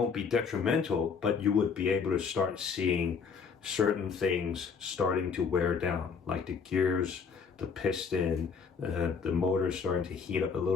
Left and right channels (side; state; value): right; quieter; 5.8 dB